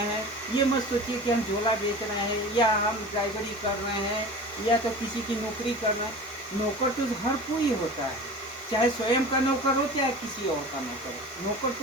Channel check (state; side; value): normal; both; correlation 0.36